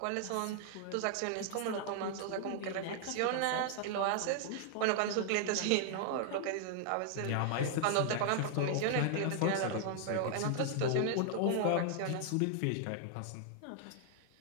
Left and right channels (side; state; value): both; different; correlation 0.00